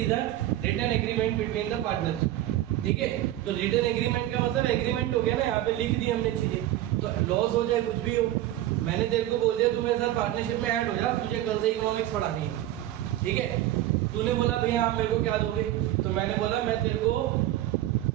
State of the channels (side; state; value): left; quieter; 14.0 dB